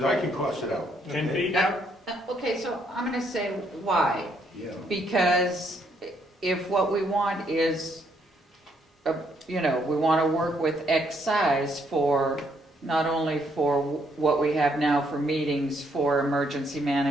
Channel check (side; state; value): both; normal; correlation 0.72